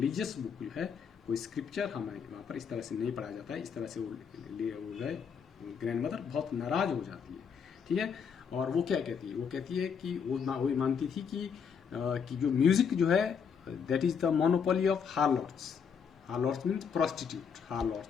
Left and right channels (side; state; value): right; quieter; 6.7 dB